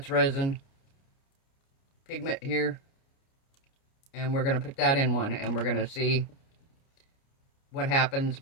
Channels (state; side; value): late; right; 29 ms